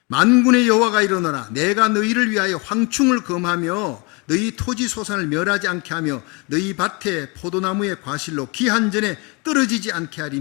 만군의 여호와가 이르노라. 내가 너희를 위하여 황충을 금하며 너희 토지 소산을 멸하지 않게 하며 너희 밭에 포도나무의 과실로 기한 전에 떨어지지 않게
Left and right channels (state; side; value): quieter; right; 29.4 dB